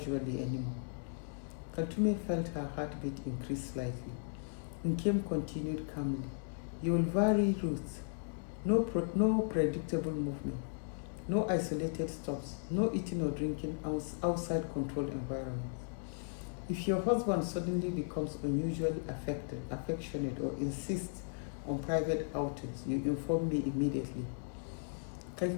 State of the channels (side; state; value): right; silent; digital silence